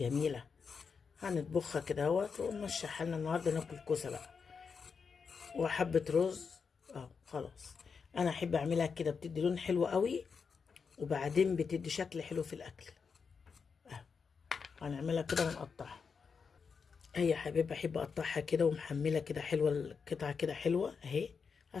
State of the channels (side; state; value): right; quieter; 5.6 dB